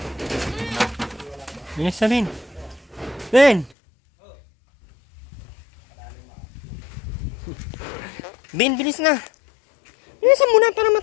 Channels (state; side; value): drops out; right; at 3.7 s